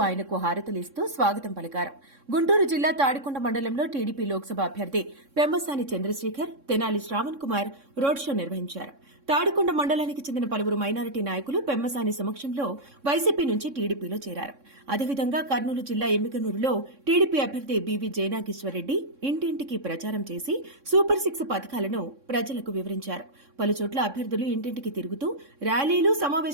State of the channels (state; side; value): late; left; 3.6 ms